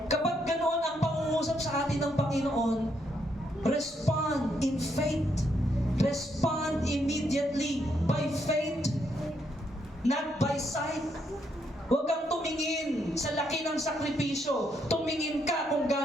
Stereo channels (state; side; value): normal; both; correlation 0.76